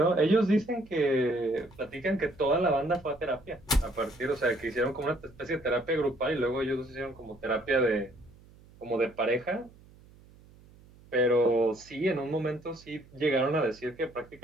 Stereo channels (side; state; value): right; noise; hum, 25 dB below the sound